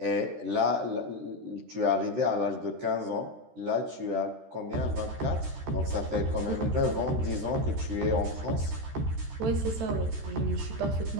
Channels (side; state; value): left; late; 13 ms